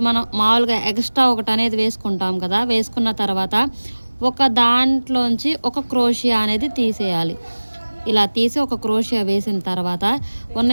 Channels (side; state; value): both; inverted; correlation -1.00